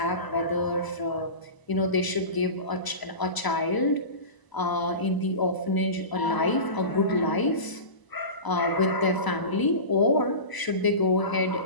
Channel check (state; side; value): late; right; 1.0 ms